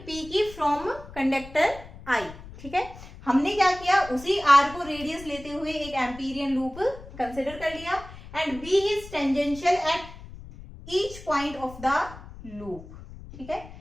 P की फ्रॉम कंडक्टर I, ठीक है। हमने क्या किया, उसी R को रेडियस लेते हुए एक एम्पीरियन लूप कंसिडर कर लिया and B is tangential at each point of the loop, ठीक है।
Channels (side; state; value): left; noise; rumble, 16 dB below the sound